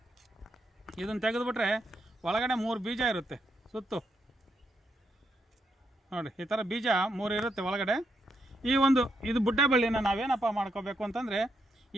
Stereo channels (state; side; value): normal; both; correlation 0.79